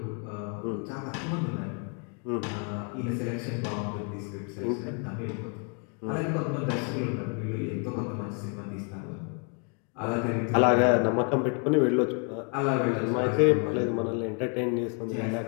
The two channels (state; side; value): quieter; right; 38.7 dB